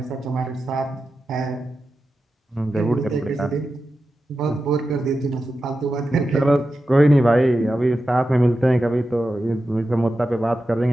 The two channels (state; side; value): normal; both; correlation 0.91